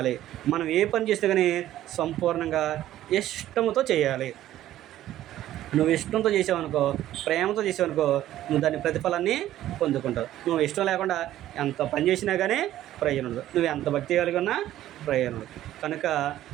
మనం ఏ పని చేస్తే కానీ సంపూర్ణంగా ఇష్టంతో చేయాలి. నువ్వు ఇష్టంతో చేసావనుకో, ప్రేమతో చేసావనుకో, నువ్వు దాని ప్రతిఫలాన్ని పొందుకుంటావు. నువ్వు ఇష్టం లేకుండా ఎంత పని చేసినా కానీ ప్రయోజనం ఉండదు, నువ్వు ఎంత భక్తి కలిగి ఉన్నా ప్రయోజనం ఉండదు. కనుక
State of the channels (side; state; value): left; quieter; 13.3 dB